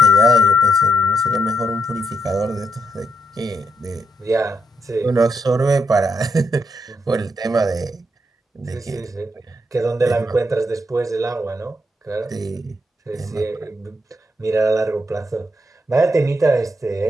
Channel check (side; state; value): both; normal; correlation 0.79